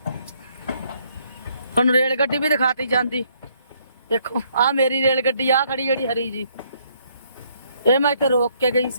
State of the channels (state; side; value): inverted; both; correlation -0.69